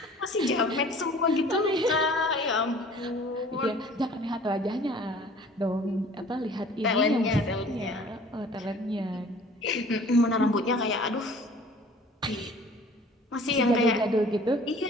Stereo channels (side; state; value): both; normal; correlation 0.49